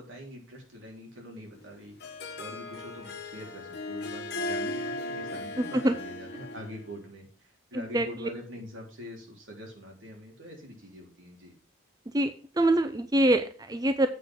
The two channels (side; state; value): both; normal; correlation 0.63